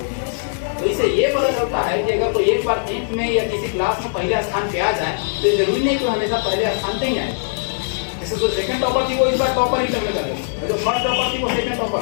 तो इससे ये पता चलता है कि अगर कोई एक बार 10th में या किसी क्लास में पहले स्थान पे आ जाए तो ये जरूरी नहीं कि हमेशा पहले स्थान पे ही आए। जैसे जो सेकंड टॉपर थी वो इस बार टॉपर ही करने लगे, जो फर्स्ट टॉपर थी वो सेकंड टॉपर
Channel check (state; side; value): silent; right; digital silence